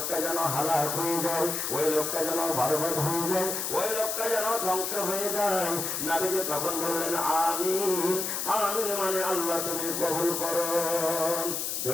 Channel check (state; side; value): noise; left; hiss, 2 dB below the sound